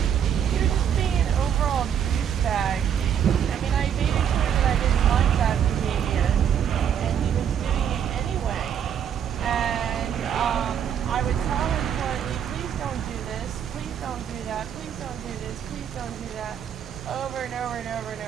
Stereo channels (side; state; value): left; quieter; 8.7 dB